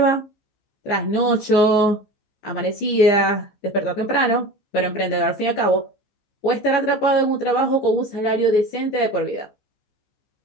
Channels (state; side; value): late; right; 14 ms